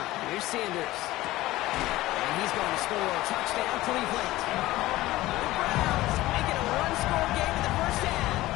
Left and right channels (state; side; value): quieter; right; 17.3 dB